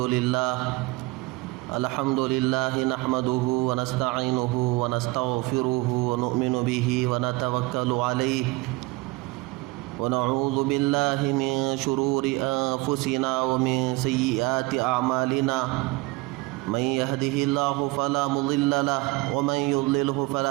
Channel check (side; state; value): left; quieter; 22.7 dB